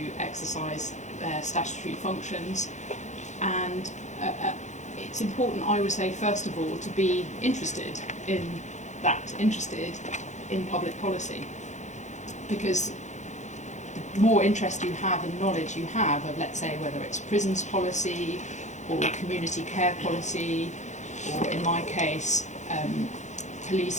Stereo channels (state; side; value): late; right; 0.34 ms